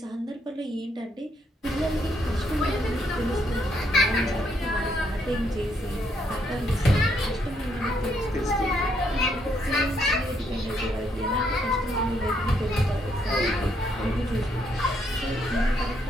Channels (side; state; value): both; normal; correlation 0.73